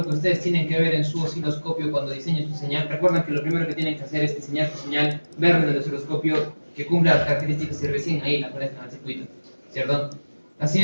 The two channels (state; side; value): inverted; both; correlation -1.00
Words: que ustedes tienen que ver en su osciloscopio cuando diseñen su señal. Recuerden que lo primero que tienen que hacer es diseñar su señal, ver en el osciloscopio que cumpla las características y recién ahí la conectan al circuito, ¿cierto? La